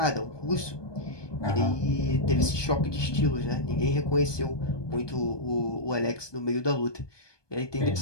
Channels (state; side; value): late; right; 1.2 ms